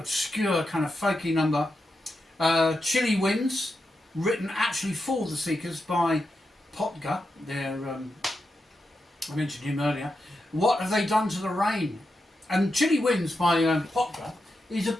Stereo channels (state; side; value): normal; both; correlation 0.87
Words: kind of folky number. Chilly Winds, written actually for the Seekers by Potger, I mentioned him earlier. What Have They Done to the Rain? And Chilly Winds by Potger is a